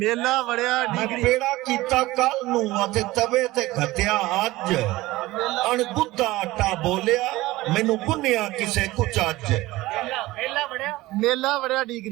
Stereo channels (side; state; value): left; quieter; 18.5 dB